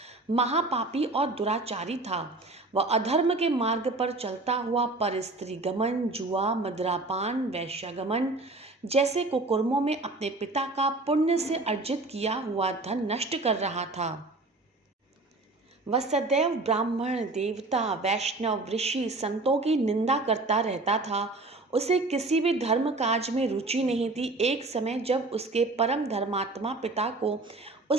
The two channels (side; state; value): left; quieter; 3.1 dB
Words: महापापी और दुराचारी था। वह अधर्म के मार्ग पर चलता हुआ पर स्त्री गमन, जुआ, मदिरापान, वैश्यागमन जैसे कुकर्मों में अपने पिता का पुण्य से अर्जित किया हुआ धन नष्ट कर रहा था। वह सदैव ब्राह्मण, देवता, वैष्णव, ऋषि, संतों की निंदा करता रहता था। उसे किसी भी धर्म काज में रुचि नहीं थी। एक समय जब उसके परम धर्मात्मा पिता को